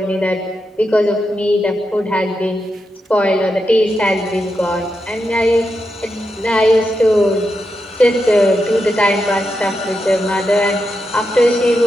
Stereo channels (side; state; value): both; normal; correlation 0.86